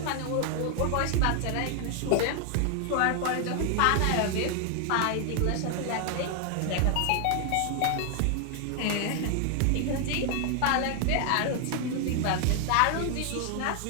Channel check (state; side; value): different; both; correlation 0.00